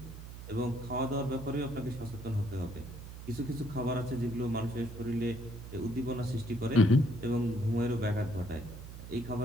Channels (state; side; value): noise; right; hum, 12 dB below the sound